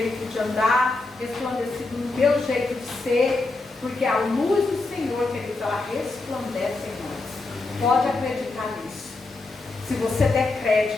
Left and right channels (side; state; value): right; quieter; 3.3 dB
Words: de andar, resplandecido no meu jeito de ser, porque a luz do Senhor, queridos, ela resplandece em nós. Pode acreditar nisso. Se você der